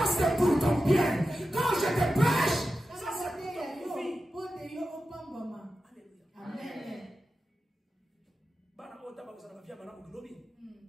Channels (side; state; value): both; normal; correlation 0.92